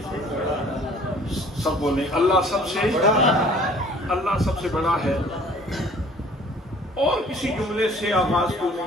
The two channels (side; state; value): both; normal; correlation 0.53